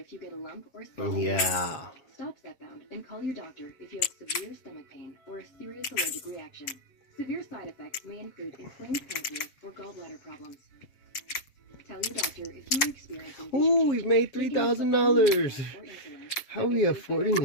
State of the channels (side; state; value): right; late; 7.3 ms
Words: you get a lump or swelling. Yeah. Stop stepbound and call your doctor if you have severe stomach pain or a serious allergic reaction. Severe side effects may include inflamed pancreas or gallbladder problems. Tell your doctor if you are experiencing. Ooh, we've made $3,000. How are we affording